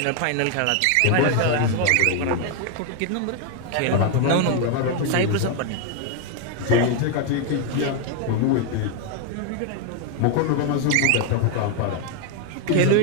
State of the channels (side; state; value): both; different; correlation 0.01